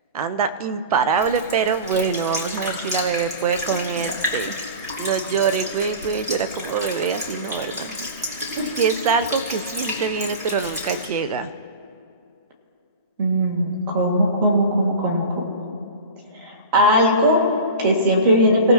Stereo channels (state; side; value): inverted; both; correlation -0.32